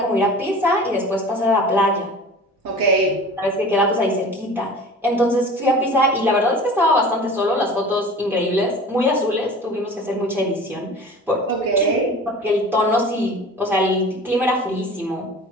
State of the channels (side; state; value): both; normal; correlation 0.40